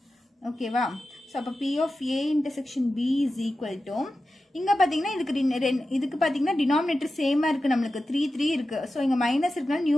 ஓகேவா? ஸோ அப்போ P of A intersection B is equal to, இங்கே பார்த்தீங்கன்னா இதுக்கு பார்த்தீங்கன்னா டினாமினேட்டர் சேமாக இருக்குது, நம்மளுக்கு 3 3 இருக்குது. ஸோ இங்கே மைனஸ் இருக்குனால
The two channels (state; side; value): normal; both; correlation 0.92